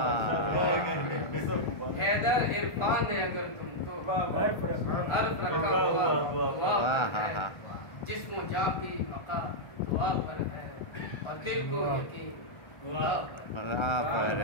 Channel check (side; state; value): right; late; 1.4 ms